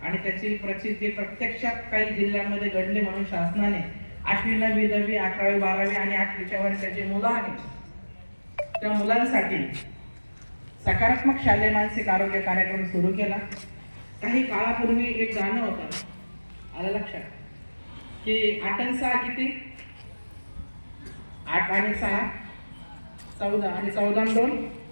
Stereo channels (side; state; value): both; inverted; correlation -1.00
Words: आणि त्याची प्रचिती प्रत्यक्षात काही जिल्ह्यांमध्ये घडले म्हणून शासनाने 8वी 9वी 10वी 11वी 12वी आणि 8वीच्या वर्षाचे मुलं आहेत त्या मुलांसाठी सकारात्मक शालेय मानसिक आरोग्य कार्यक्रम सुरू केला. काही काळापूर्वी एक गाणं होतं आलं लक्षात की 8 आणि 6 किती 8 आणि 6 14 आणि 14 आणि 2